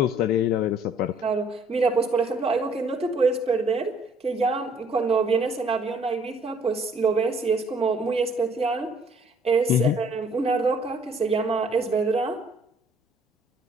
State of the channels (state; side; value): normal; both; correlation 0.61